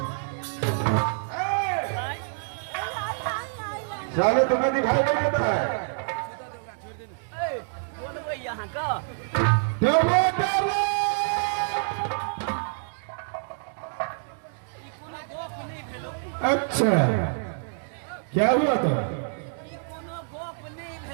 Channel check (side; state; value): left; silent; digital silence